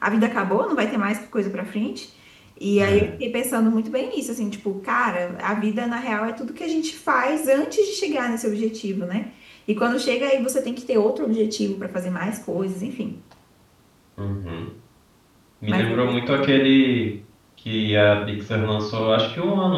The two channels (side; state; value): both; identical; correlation 1.00